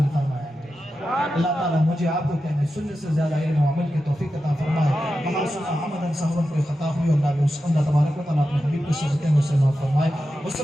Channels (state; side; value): normal; both; correlation 0.91